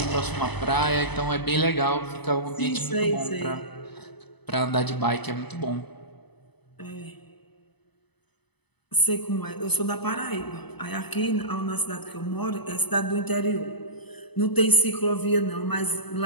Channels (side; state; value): right; late; 0.99 ms